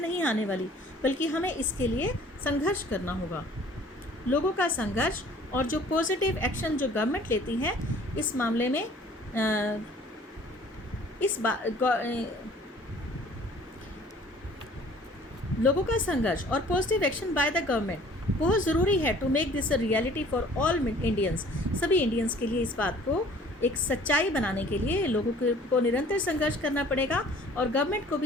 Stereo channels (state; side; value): normal; both; correlation 0.52